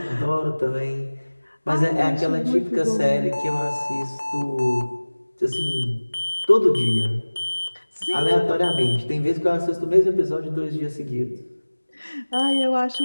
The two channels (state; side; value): inverted; both; correlation -1.00